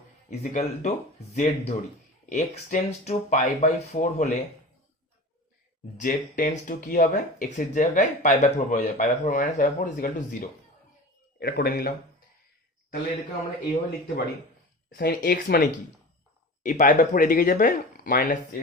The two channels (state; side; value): normal; both; correlation 0.35